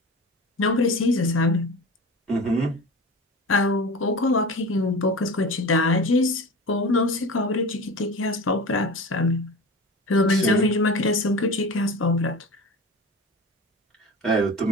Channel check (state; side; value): normal; both; correlation 0.33